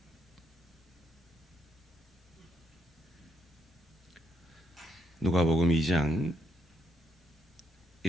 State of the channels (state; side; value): normal; both; correlation 0.76